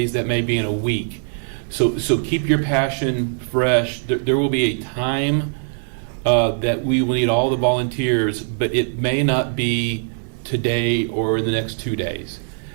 that may be in a week. So keep your passion fresh. There will be a time that we will need all the volunteers, but it may not be today or in the next 2 days.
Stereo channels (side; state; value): left; silent; digital silence